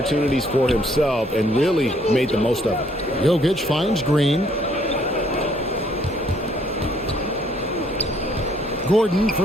for himself and really made the most of it. Jokic finds Green. Gordon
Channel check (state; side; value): normal; both; correlation 0.65